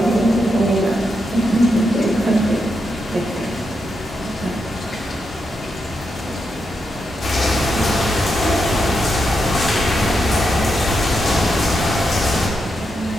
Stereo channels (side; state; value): both; normal; correlation 0.84